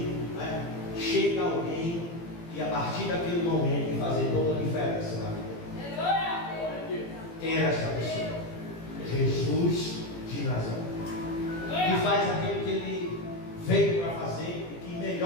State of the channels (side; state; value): right; late; 18 ms